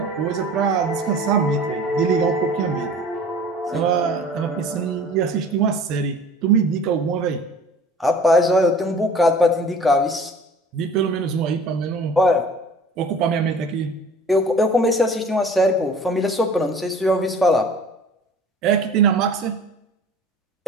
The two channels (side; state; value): both; normal; correlation 0.45